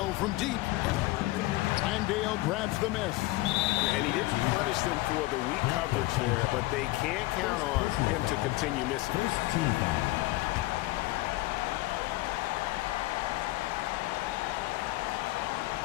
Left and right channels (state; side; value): quieter; right; 19.4 dB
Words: from deep. Landale grabs the miss. And he didn't punish them for the weak coverage there, but they can't count on him to continue missing.